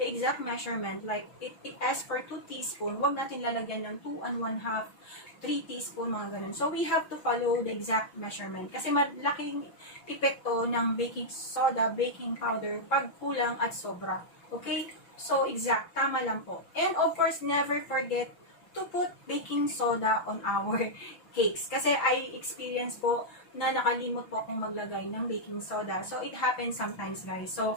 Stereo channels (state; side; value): late; right; 6.0 ms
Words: exact measurement, like it asks for 2 teaspoons, huwag natin lalagyan ng 2 and 1/2, 3 teaspoon, mga ganun. So, we have to follow the exact measurement. Kasi malaking epekto ng baking soda, baking powder, pag kulang at sobra. Okay? So, exact. Tama lang po. And of course, never forget to put baking soda on our cakes. Kasi I experience po na nakalimot po akong maglagay ng baking soda. So, it happens sometimes, guys. So,